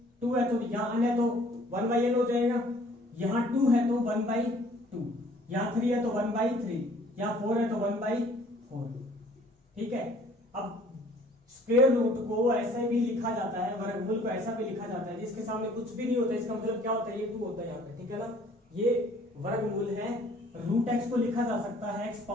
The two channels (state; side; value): normal; both; correlation 0.56